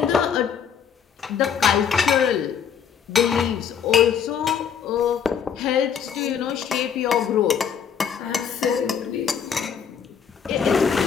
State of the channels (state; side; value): quieter; right; 7.7 dB